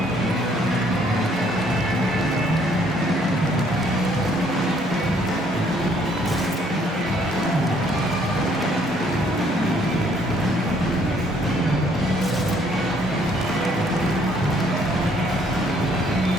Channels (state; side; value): normal; both; correlation 0.64